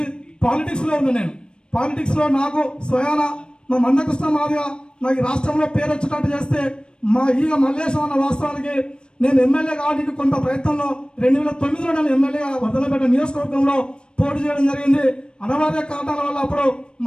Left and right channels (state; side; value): late; right; 0.053 ms